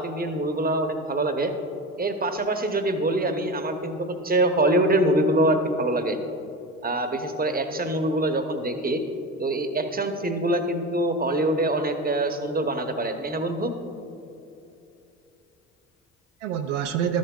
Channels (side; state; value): both; normal; correlation 0.25